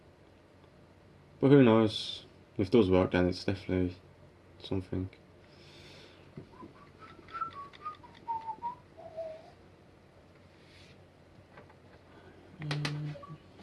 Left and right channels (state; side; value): identical; both; correlation 1.00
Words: But who knows? If it does work, then it's definitely something.